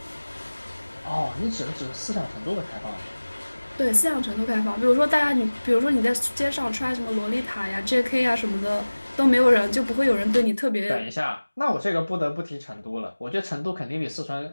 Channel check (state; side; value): inverted; both; correlation -1.00